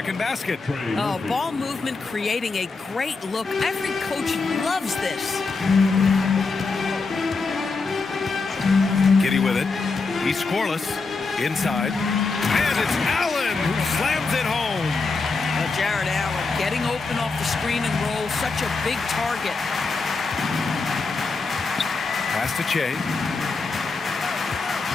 basket. Oh, ball movement creating a great look. Every coach loves this. Giddey with it. He's scoreless. Inside. And it's Allen who slams it home. Jared Allen getting open off the screen and roll. Such a big target. Pass to Che.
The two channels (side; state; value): right; quieter; 4.1 dB